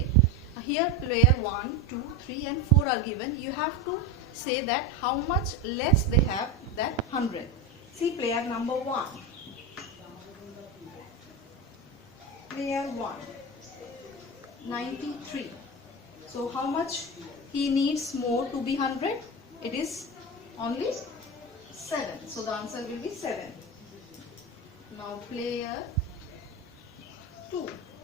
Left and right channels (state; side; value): normal; both; correlation 0.20